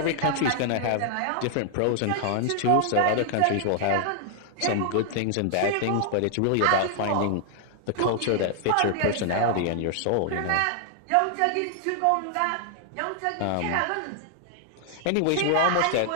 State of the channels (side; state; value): both; different; correlation -0.01